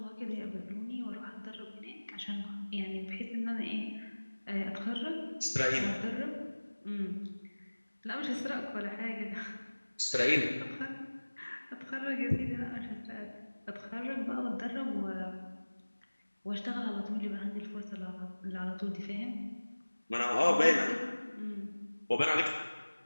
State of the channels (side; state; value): both; inverted; correlation -1.00